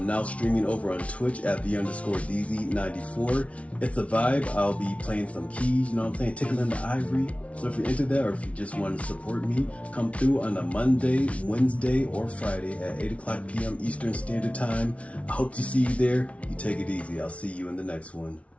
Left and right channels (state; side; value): late; right; 0.064 ms